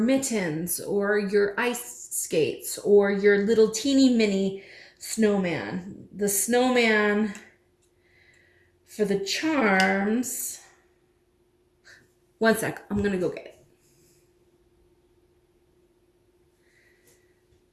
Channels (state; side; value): identical; both; correlation 1.00